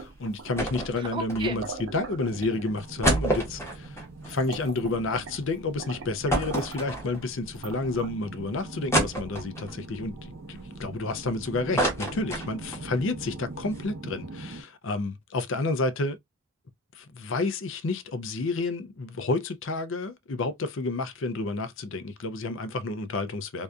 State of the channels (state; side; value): normal; both; correlation 0.34